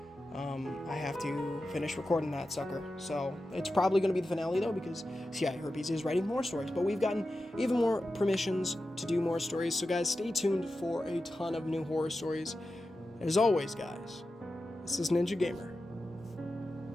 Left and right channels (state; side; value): normal; both; correlation 0.92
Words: I have to finish recording that sucker. So it's probably going to be the finale, though, because CIA Herpes is writing more stories. But we've gotten even more permissions to do more stories. So, guys, stay tuned for a ton of new horror stories. As always, guys, this is Ninja Gamer,